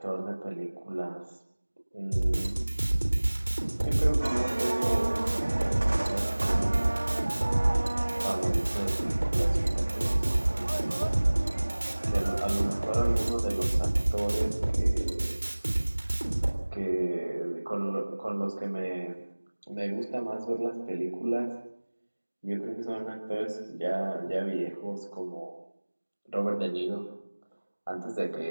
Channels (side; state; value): both; inverted; correlation -1.00